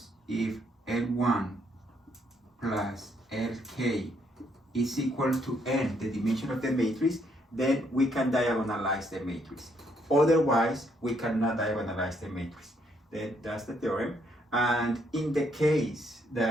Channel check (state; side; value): normal; both; correlation 0.72